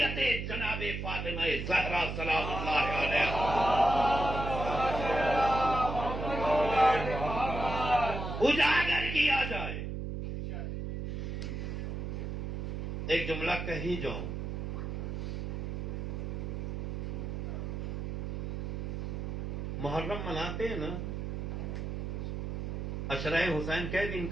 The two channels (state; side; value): noise; right; hum, 4 dB below the sound